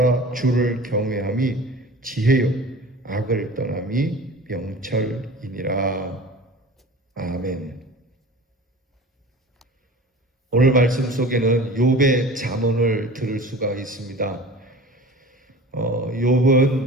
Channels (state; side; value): normal; both; correlation 0.39